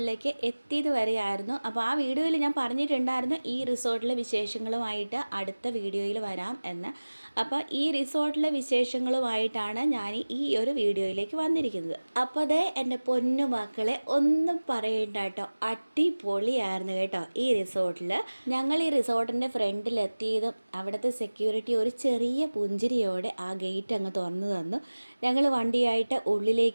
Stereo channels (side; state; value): both; inverted; correlation -1.00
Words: എത്തിയത് വരെയായിരുന്നു. അപ്പോൾ ആ വീഡിയോയിൽ ഞാൻ പറഞ്ഞിട്ടുണ്ടായിരുന്നു ഈ റിസോർട്ടിലെ വിശേഷങ്ങളുമായിട്ട് അടുത്ത വീഡിയോയിൽ വരാം എന്ന്. അപ്പോൾ ഈ റിസോർട്ടിലെ വിശേഷങ്ങളുമായിട്ടാണ് ഞാൻ ഈ ഒരു വീഡിയോയിലേക്ക് വന്നിരിക്കുന്നത്. അപ്പോൾ അതേ എൻ്റെ പൊന്നു മക്കളെ ഒന്നും പറയണ്ട കേട്ടോ, അടിപൊളിയായിരുന്നു കേട്ടോ ഈ റിസോർട്ടിൽ. ഞങ്ങൾ ഈ റിസോർട്ടിൻ്റെ ഫ്രണ്ടിലെത്തിയതും അവിടുത്തെ സെക്യൂരിറ്റി ഒരു ചെറിയ പുഞ്ചിരിയോടെ ആ ഗേറ്റ് അങ്ങ് തുറന്നു തന്നു. ഞങ്ങൾ വണ്ടിയായിട്ട്